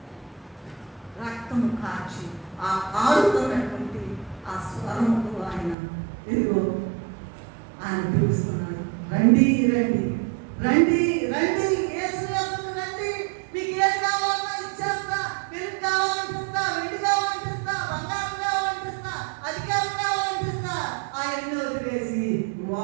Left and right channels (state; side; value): drops out; left; at 5.8 s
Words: కాచి ఆ కారుతున్నటువంటి ఆ స్వరముకు ఆయన ఇదిగో ఆయన పిలుస్తున్నాడు, రండి రండి రండి రండి, యేసు యొద్దకు రండి, మీకు ఏం కావాలన్నా ఇచ్చేస్తా, వెలుగు కావాలంటిస్తా, వెండి కావాలంటిస్తా, బంగారం కావాలంటిస్తా, అధికారం కావాలంటిస్తా. ఆయన్ని వదిలేసి